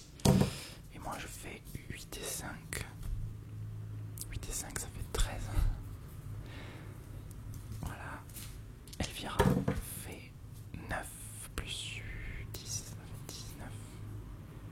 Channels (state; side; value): identical; both; correlation 1.00